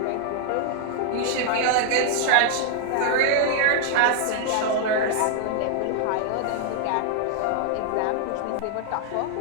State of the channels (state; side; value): different; both; correlation 0.00